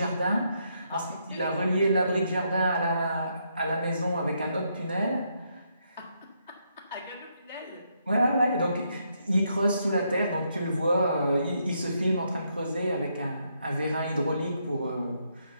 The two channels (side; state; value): both; inverted; correlation -0.77